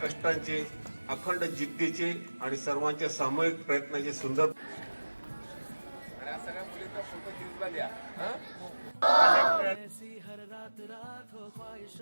अखंड जिद्दीचे आणि सर्वांच्या सामूहिक प्रयत्नाचे सुंदर. ऐसी हर रात रात हो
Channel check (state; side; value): inverted; both; correlation -1.00